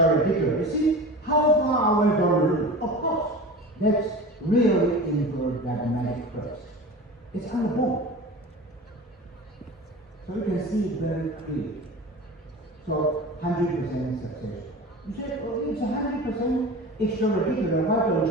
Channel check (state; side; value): normal; both; correlation 0.34